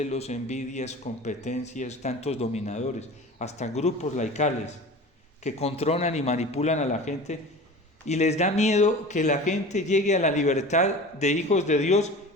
envidias, competencias, tantos dominadores, hasta grupos laicales que controlan y manipulan a la gente y les da miedo que la gente llegue a la libertad de hijos de Dios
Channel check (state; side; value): normal; both; correlation 0.36